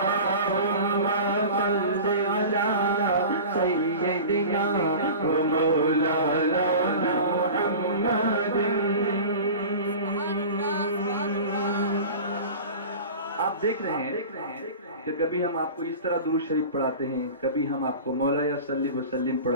صلی علی سیدنا و مولانا محمد۔ آپ دیکھ رہے ہیں کہ کبھی ہم آپ کو اس طرح درود شریف پڑھاتے ہیں، کبھی ہم آپ کو مولا صلی وسلم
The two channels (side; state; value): both; inverted; correlation -0.36